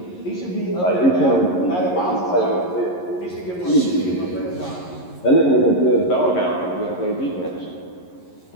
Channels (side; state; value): right; late; 11 ms